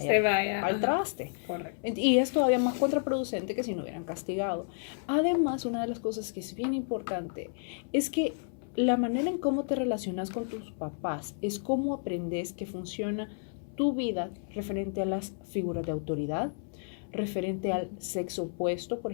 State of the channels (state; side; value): silent; right; 57 dB below the other